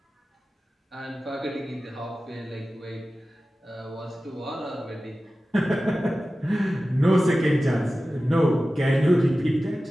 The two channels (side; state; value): both; normal; correlation 0.95